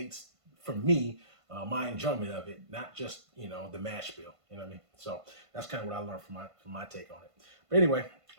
for me my enjoyment of it, not just the mash bill. You know what I mean? So that's kind of what I learned from my take on it. But anyway,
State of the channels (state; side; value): late; left; 1.5 ms